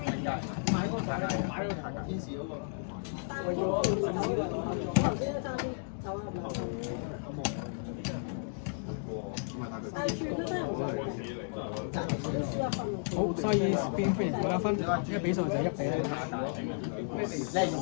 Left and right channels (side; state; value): right; silent; digital silence